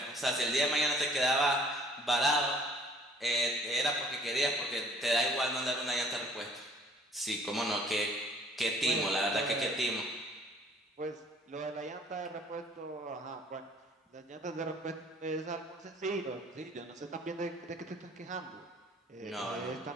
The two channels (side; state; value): both; normal; correlation 0.56